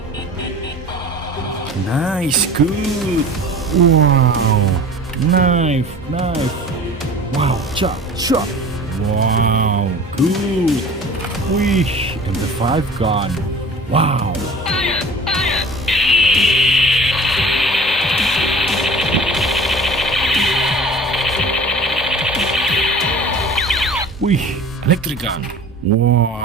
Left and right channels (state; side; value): normal; both; correlation 0.42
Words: Nice, good. Wow, knife. Wow, chop. Wow, good. Wih, MP5 gun. Wow. Wih, electric gun.